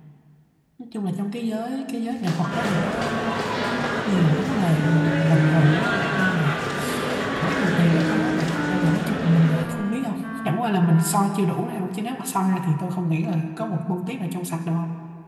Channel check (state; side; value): identical; both; correlation 1.00